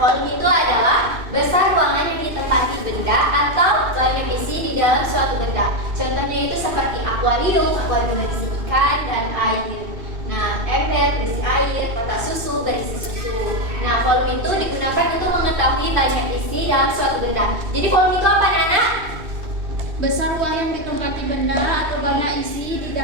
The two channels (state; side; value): late; left; 2.6 ms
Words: itu adalah besar ruangan yang ditempati benda atau banyak isi di dalam suatu benda. Contohnya itu seperti akuarium berisi ikan dan air. Nah, ember berisi air, kotak susu berisi susu. Nah, volume itu digunakan untuk mengetahui banyak isi dalam suatu benda. Jadi volume itu apa, anak? Besar ruang yang ditempati benda atau banyak isi di